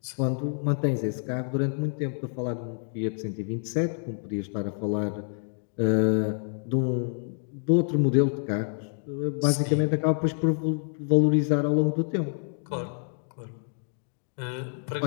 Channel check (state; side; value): silent; right; digital silence